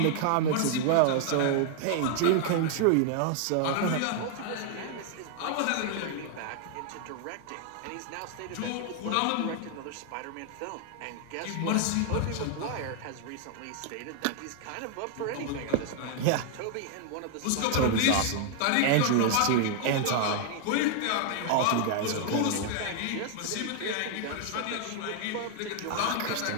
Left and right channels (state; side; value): different; both; correlation 0.00